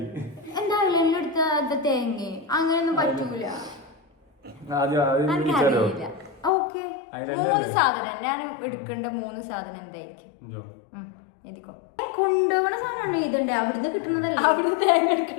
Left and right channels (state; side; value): drops out; right; at 6.5 s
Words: എന്താ ഐലൻഡിൽ എടുത്ത തേങ്ങ? അങ്ങനെയൊന്നും പറ്റൂല. എനിക്കറിയില്ല. ഓക്കെ, 3 സാധനം ഞാൻ എടുക്കേണ്ട 3 സാധനം എന്തായിരിക്കും? എഴുതിക്കോ. കൊണ്ടുപോകണ സാധനമാണ് ഇതുണ്ട്. അവിടുന്ന് കിട്ടുന്നതല്ല. അവിടുന്ന് തേങ്ങ